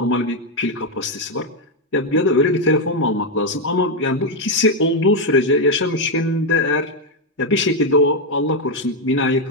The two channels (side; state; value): both; normal; correlation 0.04